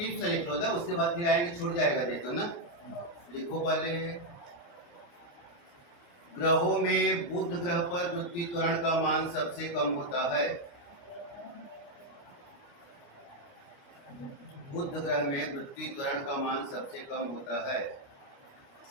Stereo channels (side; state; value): right; late; 29 ms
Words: से लिख लो ना, उसके बाद फिर आएंगे, छूट जाएगा नहीं तो ना। लिखो पहले, ग्रहों में बुध ग्रह पर पृथ्वी त्वरण का मान सबसे कम होता है। बुध ग्रह में पृथ्वी त्वरण का मान सबसे कम होता है।